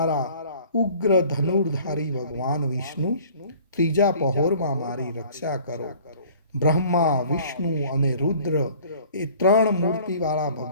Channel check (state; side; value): inverted; both; correlation -0.50